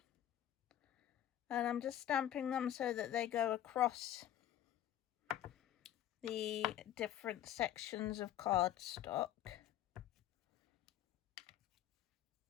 and I'm just stamping them so that they go across the different sections of cardstock,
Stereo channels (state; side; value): quieter; right; 11.8 dB